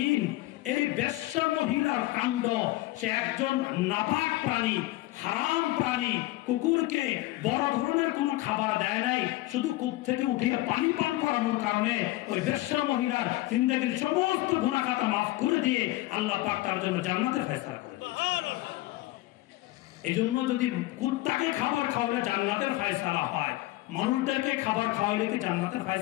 এই বেশ্যা মহিলার কাণ্ড, সে একজন নাপাক প্রাণী, হারাম প্রাণী, কুকুরকে বড় ধরনের কোনো খাবার দেয় নাই, শুধু কূপ থেকে উঠিয়ে পানি পান করানোর কারণে ওই বেশ্যা মহিলার জিন্দেগির সমস্ত গুনাহ খাতা মাফ করে দিয়ে আল্লাহ পাক তার জন্য জান্নাতের ফয়সালা করে দিয়েছে। এই জন্য যদি কুত্তাকে খাবার খাওয়ালে জান্নাতের ফয়সালা হয়, মানুষদেরকে খাবার খাওয়াইলে কি জান্নাতের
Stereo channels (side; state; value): right; quieter; 18.1 dB